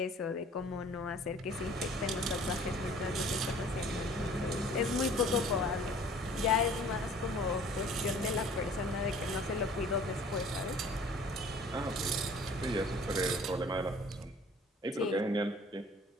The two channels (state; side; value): normal; both; correlation 0.50